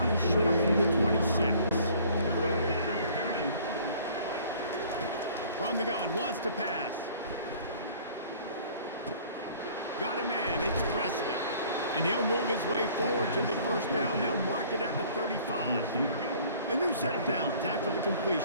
and short from the 26. From the gun, wants to pass. Got a man, it's Presley. And he'll move his way forward to the first down. They'll mark it at the 35. A new set of downs after the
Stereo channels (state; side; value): inverted; both; correlation -0.53